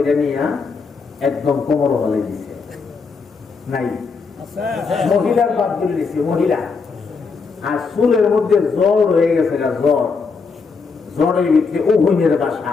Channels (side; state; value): right; quieter; 4.9 dB